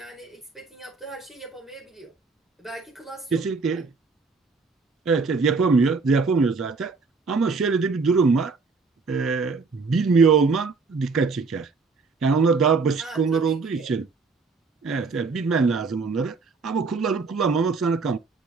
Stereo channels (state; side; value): quieter; left; 4.4 dB